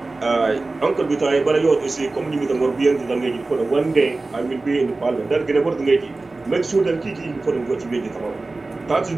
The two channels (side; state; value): left; quieter; 3.3 dB